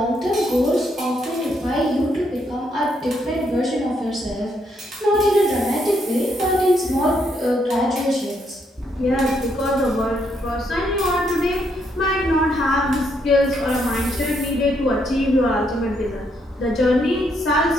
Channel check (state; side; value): normal; both; correlation 0.75